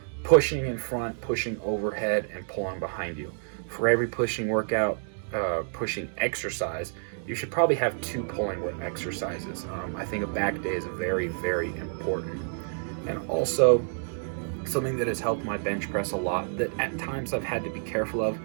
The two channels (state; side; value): silent; left; digital silence